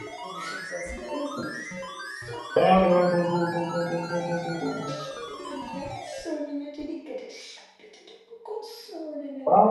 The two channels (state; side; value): identical; both; correlation 1.00